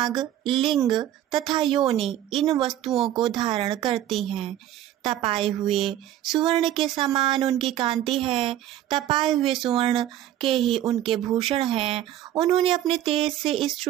लिंग तथा योनि इन वस्तुओं को धारण करती हैं। तपाए हुए सुवर्ण के समान उनकी कांति है। तपाए हुए सुवर्ण के ही उनके भूषण हैं। उन्होंने अपने तेज से इस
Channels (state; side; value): quieter; left; 12.5 dB